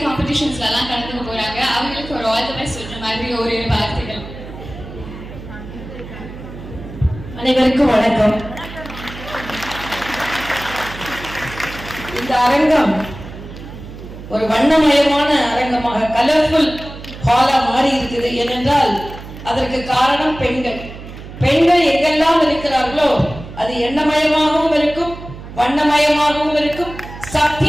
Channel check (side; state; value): right; noise; hum, 13 dB below the sound